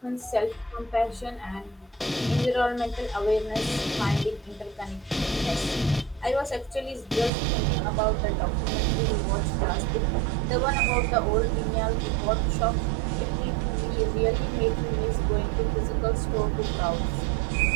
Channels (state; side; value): drops out; left; at 7.3 s